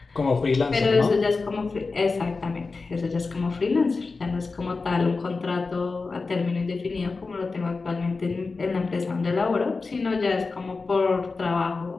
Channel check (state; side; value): quieter; right; 4.1 dB